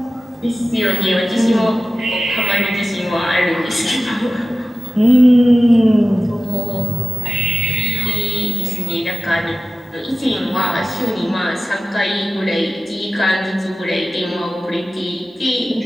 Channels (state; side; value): normal; both; correlation 0.96